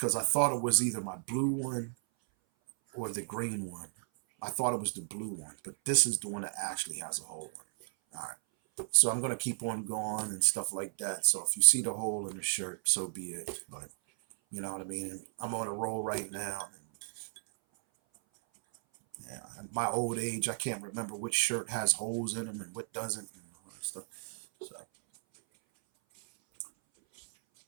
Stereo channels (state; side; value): silent; left; 55 dB below the other